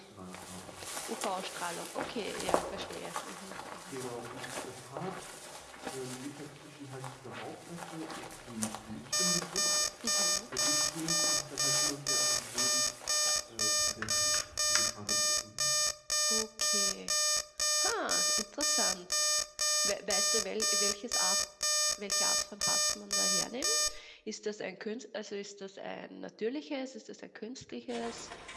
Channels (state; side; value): identical; both; correlation 1.00